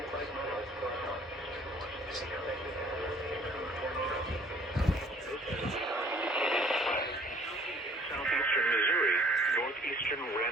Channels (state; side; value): normal; both; correlation 0.55